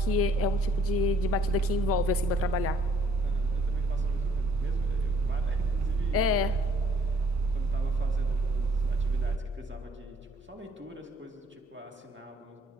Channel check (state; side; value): normal; both; correlation 0.63